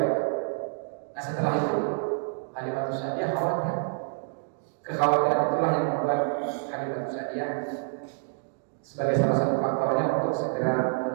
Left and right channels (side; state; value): left; silent; digital silence